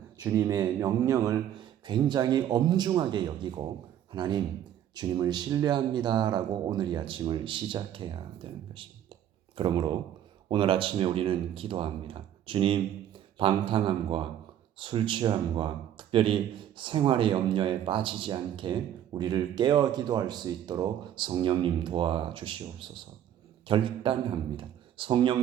주님의 명령을 굉장히 엄중하게 여기고 하나님, 주님을 신뢰합니다라고 오늘 이 아침을 시작해야 되는 것입니다. 그러므로 오늘 아침에 우리는 기도합니다. 주님, 방탕함과 술 취함과 특별히 생활의 염려에 빠지지 않게 우리를 깨어 기도할 수 있도록 성령님 도와주시옵소서. 결단합니다.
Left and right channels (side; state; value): left; quieter; 10.7 dB